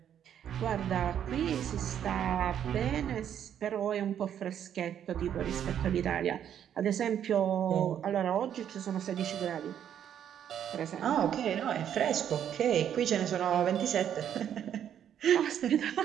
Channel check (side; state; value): left; quieter; 9.5 dB